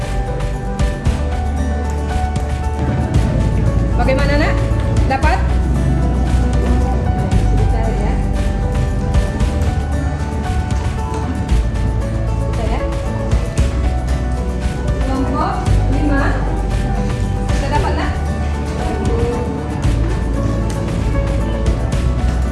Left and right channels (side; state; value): both; identical; correlation 1.00